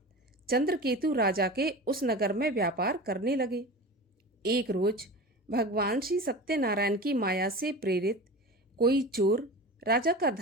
चंद्रकेतु राजा के उस नगर में व्यापार करने लगे। एक रोज भगवान श्री सत्यनारायण की माया से प्रेरित कोई चोर राजा का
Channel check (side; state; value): both; normal; correlation 0.31